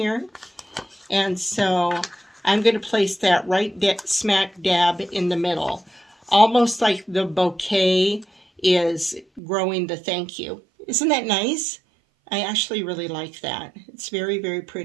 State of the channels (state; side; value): drops out; left; at 9.4 s